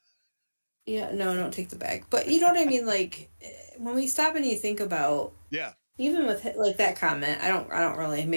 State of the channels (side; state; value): both; inverted; correlation -1.00